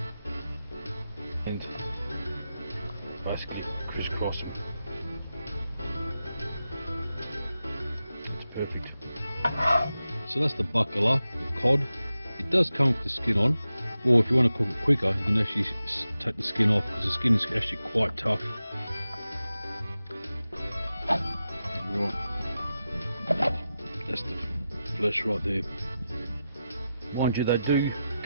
and basically crisscross them. It's perfect. So that's the Baccala, the cod. It does come with the skin on, or if you want to cook it quicker, you can actually take the skin off because the skin is actually quite tough. Right, that's the flesh right there. Mind you, they do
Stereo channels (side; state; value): both; inverted; correlation -0.91